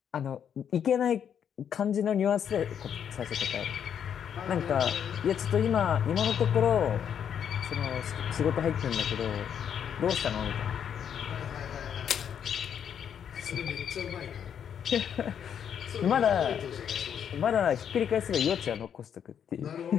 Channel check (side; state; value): right; quieter; 8.4 dB